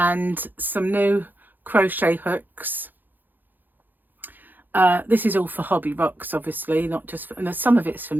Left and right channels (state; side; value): late; left; 0.088 ms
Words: some new crochet hooks. This is all for Hobby Rocks, obviously, not just for, and some of it's for